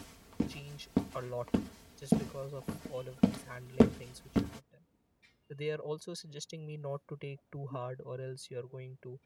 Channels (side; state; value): both; identical; correlation 1.00